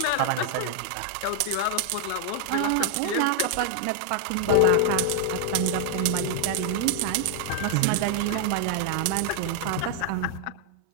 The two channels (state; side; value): different; both; correlation 0.00